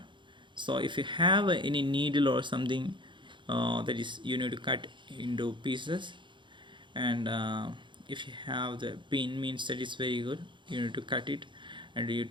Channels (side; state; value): left; late; 0.23 ms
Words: So if you have any needle or something, that is you need to cut into pieces, and if you have the pin, means that is very good. You need to cut it, and you have